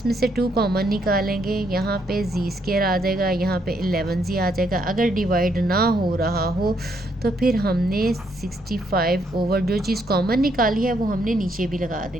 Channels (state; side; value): normal; both; correlation 0.73